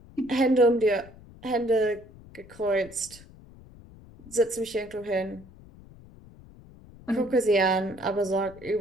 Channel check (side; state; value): left; noise; rumble, 21 dB below the sound